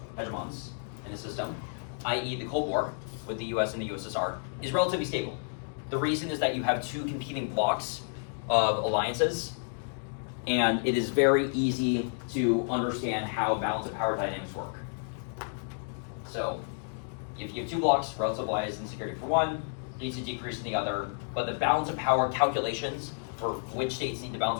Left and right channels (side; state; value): right; silent; digital silence